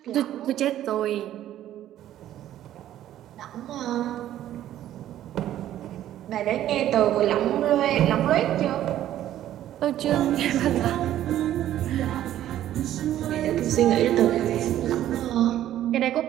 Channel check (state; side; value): quieter; left; 12.4 dB